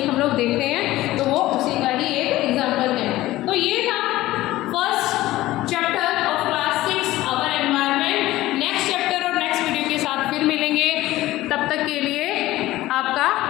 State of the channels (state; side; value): quieter; right; 16.6 dB